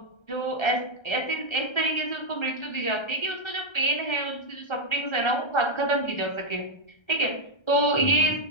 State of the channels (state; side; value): late; right; 1.3 ms